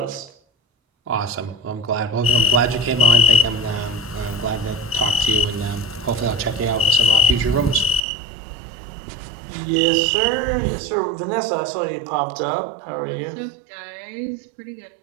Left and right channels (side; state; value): left; drops out; at 8.0 s